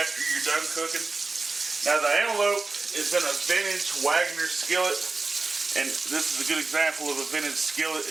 you're done cooking. Now, the antelope is in a vintage Wagner skillet. And this is a good example of a vintage skillet.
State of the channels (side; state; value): left; quieter; 3.8 dB